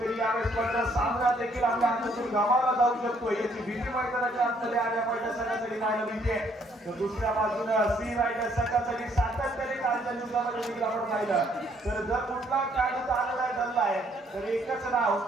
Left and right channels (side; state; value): both; normal; correlation 0.67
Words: यावेळेस मात्र सामना देखील आपल्या हातातून गमावला जाऊ शकतो याची भीती मैदानाच्या आतमध्ये आलिया फायटर संघासाठी पाहायला मिळते. तर दुसऱ्या बाजूने सी रायडर संघासाठी सातत्याने कालच्या दिवसामध्ये देखील आपण पाहिलं तर जर कुठला खेळाडू आलेला आहे धरला आहे तर एकच नाव